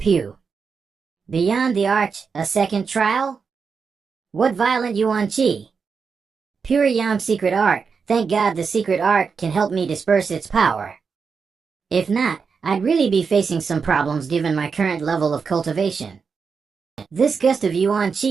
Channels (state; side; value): quieter; left; 5.5 dB